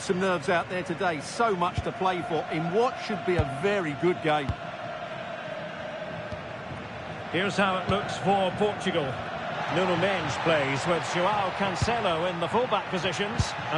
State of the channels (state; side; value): identical; both; correlation 1.00